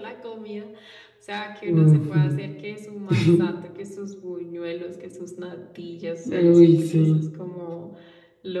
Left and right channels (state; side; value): identical; both; correlation 1.00